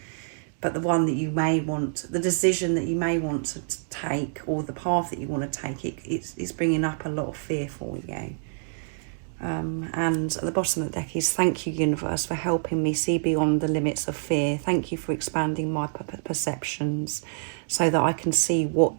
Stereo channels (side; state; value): left; silent; digital silence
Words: But the one that you may want, the decision that you may want to take, or the path that you want to take, it's bringing up a lot of fear for you. And at the bottom of the deck is, thank you, universe, for helping me see beyond the limits of fear. Thank you for expanding my perceptions so that I can see what